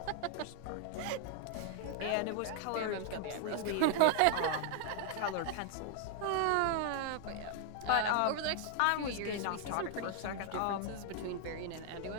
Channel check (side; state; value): both; different; correlation 0.00